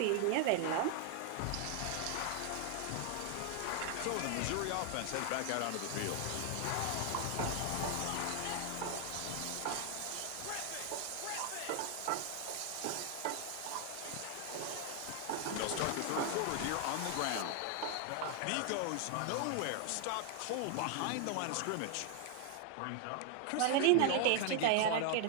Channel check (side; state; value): both; different; correlation 0.00